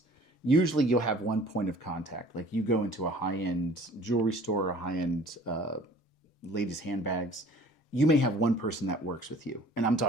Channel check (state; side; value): normal; both; correlation 0.50